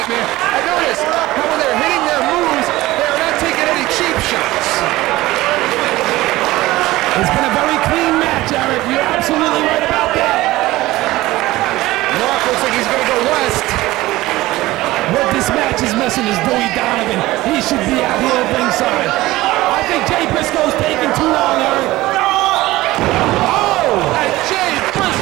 And notice how when they're hitting their moves, they are not taking any cheap shots. It's been a very clean match, Eric. You're absolutely right about that. Mark looks like he's going to go west. What this match is missing is Dewey Donovan. He should be out here at ringside. I think Jay Briscoe's taking too long, Eric. Oh! And Jay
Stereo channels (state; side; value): quieter; left; 17.9 dB